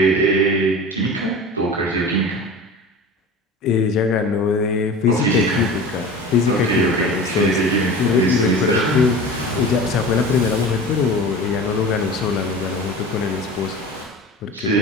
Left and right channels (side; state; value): both; normal; correlation 0.35